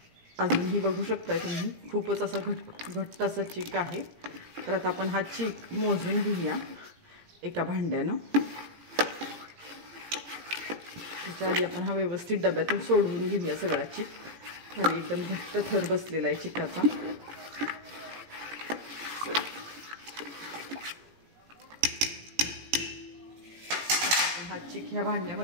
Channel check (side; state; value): left; late; 17 ms